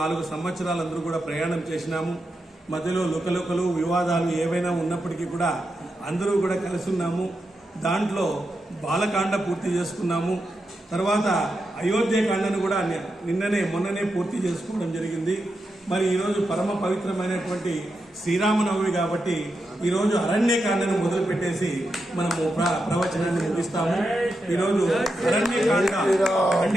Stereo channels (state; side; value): normal; both; correlation 0.87